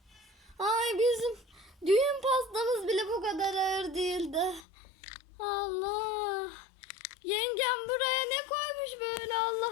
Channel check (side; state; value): right; drops out; at 4.6 s